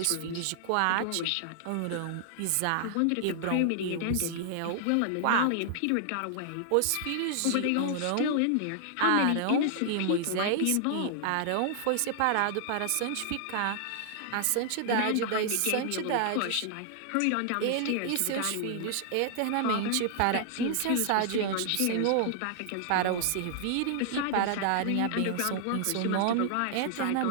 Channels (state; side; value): different; both; correlation -0.01